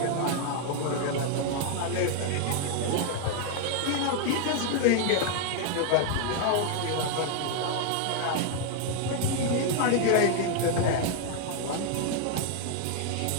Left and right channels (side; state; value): both; different; correlation 0.00